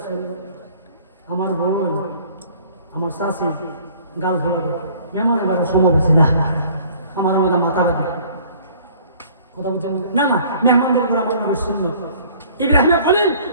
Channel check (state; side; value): inverted; both; correlation -0.53